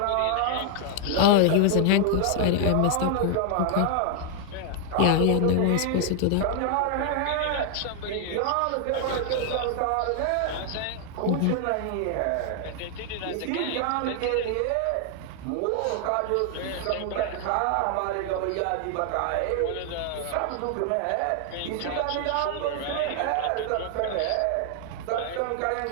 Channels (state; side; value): different; both; correlation 0.00